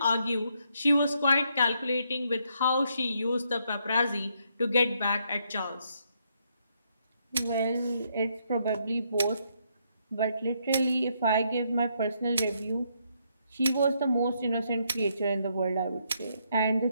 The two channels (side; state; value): both; inverted; correlation -0.75